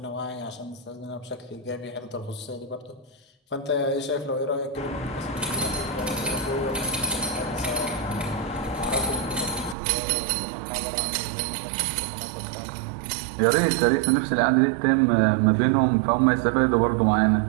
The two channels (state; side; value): drops out; left; at 9.8 s